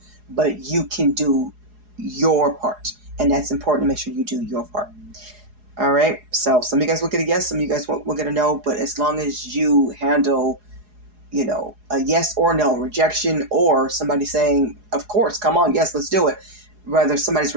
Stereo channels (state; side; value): late; left; 4.8 ms